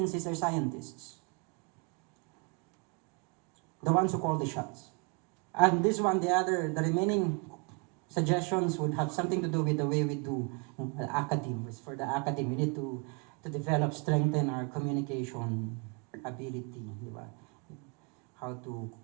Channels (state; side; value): quieter; left; 34.1 dB